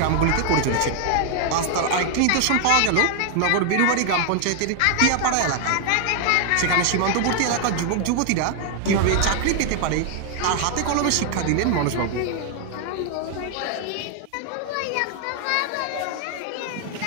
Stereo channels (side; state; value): both; different; correlation 0.00